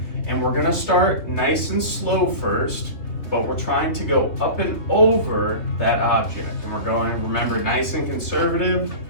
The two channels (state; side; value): late; right; 3.4 ms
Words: and we're gonna start nice and slow first, but we're trying to go up and over that object. And we're going, remember, nice and conservative.